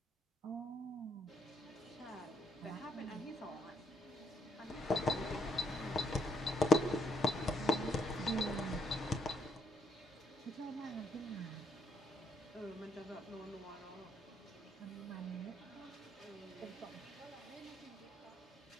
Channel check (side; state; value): both; normal; correlation 0.73